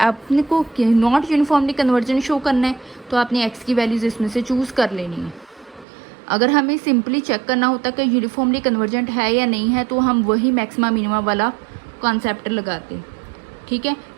को नॉट यूनिफॉर्मली कन्वर्जेंट शो करना है तो आपने एक्स की वैल्यूज़ इसमें से चूज़ कर लेनी है। अगर हमें सिंपली चेक करना होता कि यूनिफॉर्मली कन्वर्जेंट है या नहीं है तो हम वही मैक्सिमा मिनिमा वाला कॉन्सेप्ट लगाते, ठीक है,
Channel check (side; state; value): left; drops out; at 5.9 s